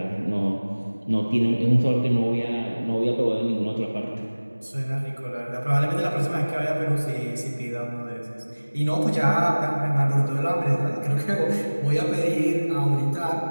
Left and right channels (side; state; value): both; inverted; correlation -1.00